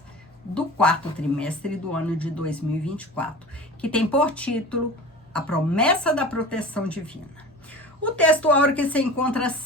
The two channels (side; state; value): both; normal; correlation 0.36